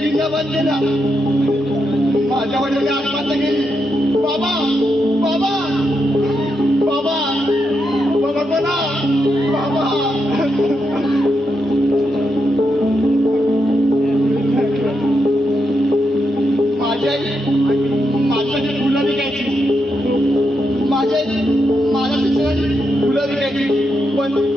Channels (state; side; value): normal; both; correlation 0.83